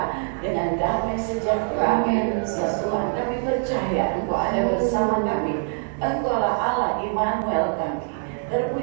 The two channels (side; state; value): left; silent; 56 dB below the other